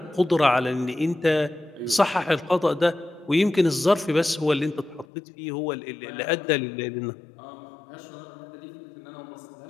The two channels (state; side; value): drops out; right; at 5.1 s